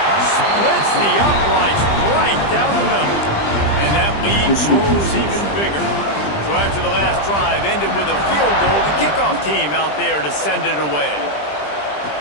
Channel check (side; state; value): right; late; 20 ms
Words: Splits the uprights right down the middle. And that lead grows even bigger. So after the last drive ended with a field goal, the kickoff team out there to send it away.